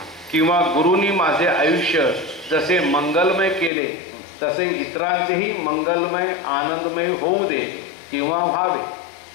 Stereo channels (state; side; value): drops out; right; at 3.7 s